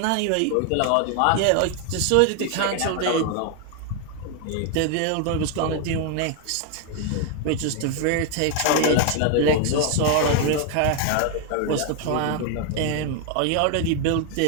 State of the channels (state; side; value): different; both; correlation 0.01